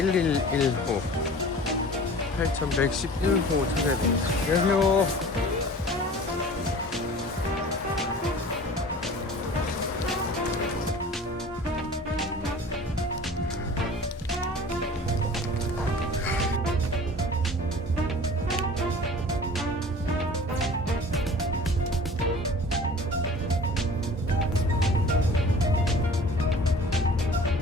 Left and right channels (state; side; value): normal; both; correlation 0.43